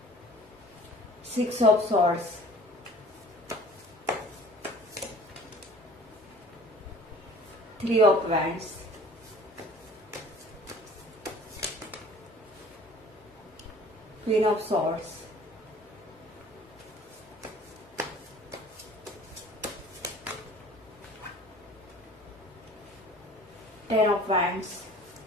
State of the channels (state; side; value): normal; both; correlation 0.48